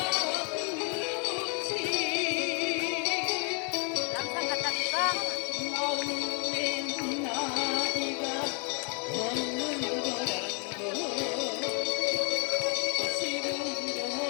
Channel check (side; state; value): right; quieter; 36.8 dB